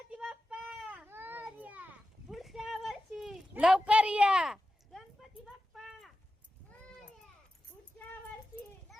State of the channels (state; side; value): normal; both; correlation 0.92